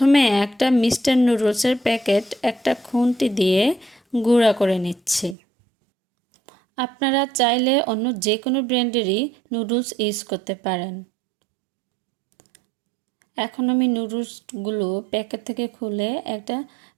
একটা মিস্টার নুডলসের প্যাকেট একটা খুন্তি দিয়ে গুঁড়া করে নিচ্ছি। আপনারা চাইলে অন্য যে কোনো ব্র্যান্ডেরই নুডলস ইউজ করতে পারেন। এখন আমি নুডলসগুলো প্যাকেট থেকে খুলে একটা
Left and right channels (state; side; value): drops out; left; at 5.4 s